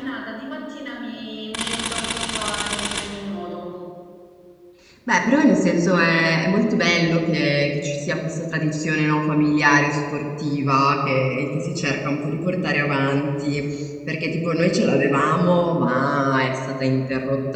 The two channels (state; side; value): identical; both; correlation 1.00